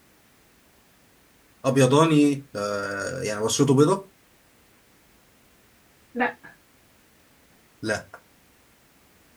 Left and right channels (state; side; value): identical; both; correlation 1.00